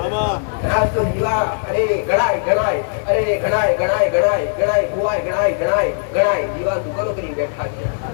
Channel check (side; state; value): right; silent; digital silence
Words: તો દીવા અરે ગણાય ભુવાય ગણાય દીવા દુકાનો કરી બેઠા છે.